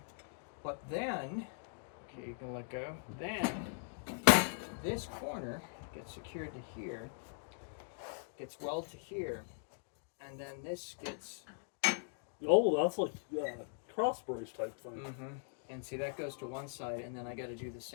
But then, okay, you can let go. Then this corner gets secured to here. Gets welded to here. And then this gets. Oh, that's like cross brace type thing. Mm-hmm. And see, that goes to one side, and then I got to do the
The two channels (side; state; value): right; silent; digital silence